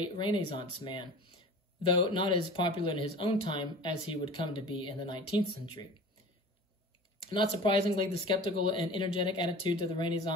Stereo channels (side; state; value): both; normal; correlation 0.39